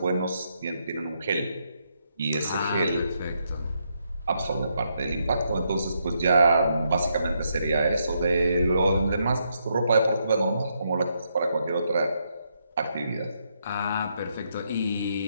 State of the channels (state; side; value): inverted; both; correlation -0.77